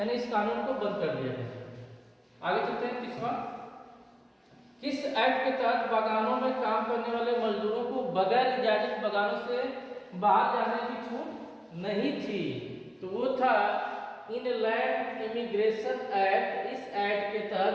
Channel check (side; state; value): both; identical; correlation 1.00